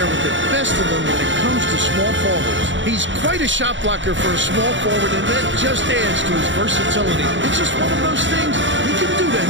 with the best of them when it comes to small forwards. He's quite a shot blocker for a small forward, and that just adds to his versatility. It's just one of those things he can do to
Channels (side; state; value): left; late; 0.55 ms